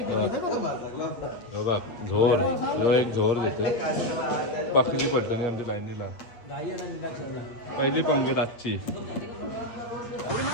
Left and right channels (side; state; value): right; late; 8.5 ms